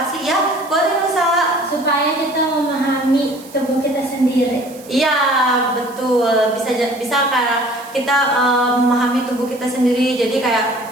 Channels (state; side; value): noise; right; hiss, 21 dB below the sound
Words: sih ya? Boleh Nusa. Supaya kita memahami tubuh kita sendiri. Iya, betul. Bisa karena kita memahami tubuh kita sendiri. Jadi